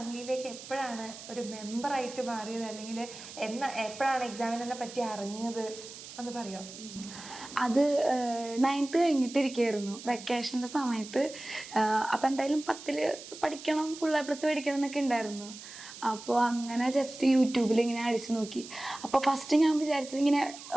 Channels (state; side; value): noise; right; hiss, 14 dB below the sound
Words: എപ്പോഴാണ് ഒരു മെമ്പറായിട്ട് മാറിയത്, അല്ലെങ്കിൽ എപ്പോഴാണ് എക്സാമിനറിനെ പറ്റി അറിഞ്ഞത് ഒന്ന് പറയോ? അത് 9th കഴിഞ്ഞിട്ടിരിക്കുകയായിരുന്നു, വെക്കേഷൻ്റെ സമയത്ത്. അപ്പം എന്തായാലും 10ൽ പഠിക്കണം, ഫുൾ A+ പഠിക്കണം എന്നൊക്കെ ഉണ്ടായിരുന്നു. അപ്പോൾ അങ്ങനെ ജസ്റ്റ് യൂട്യൂബിൽ ഇങ്ങനെ അടിച്ചു നോക്കി. അപ്പോൾ ഫസ്റ്റ് ഞാൻ വിചാരിച്ചത് ഇങ്ങനെ